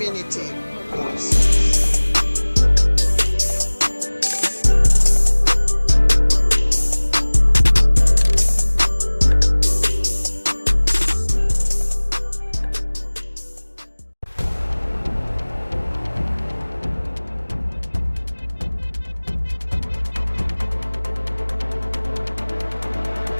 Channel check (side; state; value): both; inverted; correlation -1.00